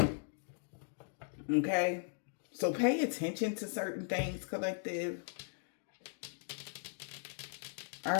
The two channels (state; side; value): silent; right; digital silence